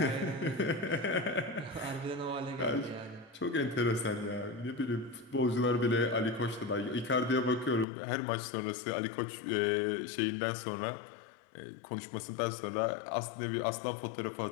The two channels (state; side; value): drops out; right; at 7.9 s